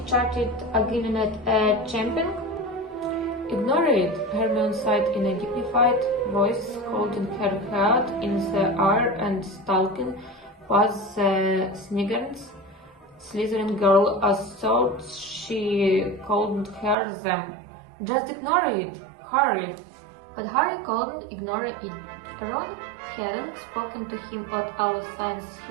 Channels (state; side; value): drops out; left; at 16.9 s